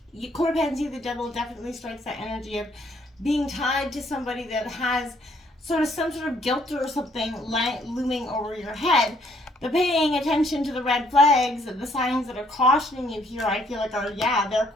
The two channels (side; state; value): both; normal; correlation 0.67